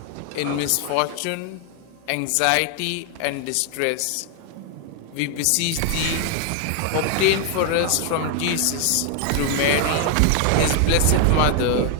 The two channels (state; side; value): different; both; correlation 0.00